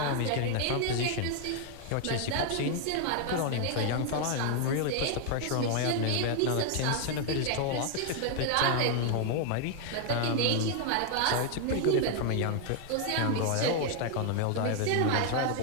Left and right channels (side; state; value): both; different; correlation 0.00